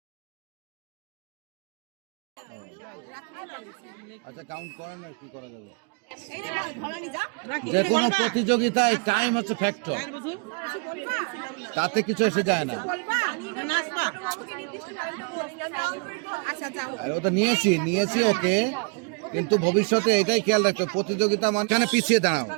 আচ্ছা কাউন্ট করেন আর কি করা যাবে। রাখি যে কোনো প্রতিযোগিতায় টাইম হচ্ছে ফ্যাক্টর, গায়ের বধূ তাতে কিছু এসে যায় না। নাচবা। আচ্ছা যাও। আর ওটা নিয়েছি ওকে, কিন্তু ভবিষ্যতে এটাই খেয়াল রাখতো প্রতিযোগিতা মানে পিছিয়ে দাঁড়াও,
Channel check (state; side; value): quieter; left; 34.4 dB